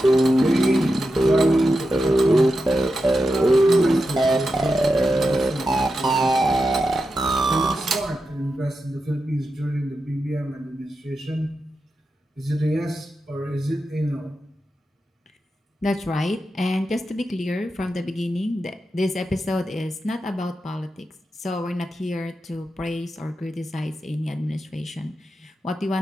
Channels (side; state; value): both; normal; correlation 0.89